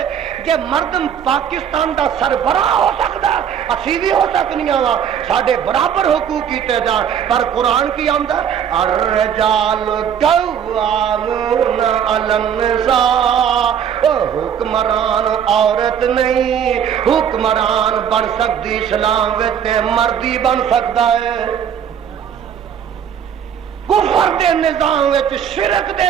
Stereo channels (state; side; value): quieter; left; 8.5 dB